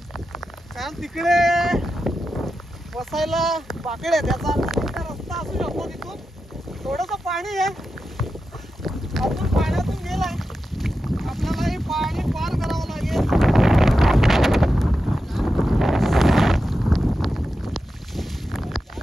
कारण तिकडे बसायला बाकडे, त्याचा रस्ता असू शकतो. तिथून थोडंसं पाणी आहे, अजून पाण्यातून गेलाय, आपल्याला हे पाणी पार करावं लागेल.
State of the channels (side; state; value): both; normal; correlation 0.90